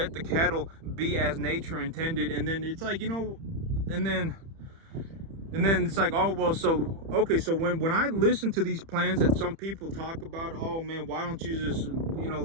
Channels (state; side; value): late; left; 30 ms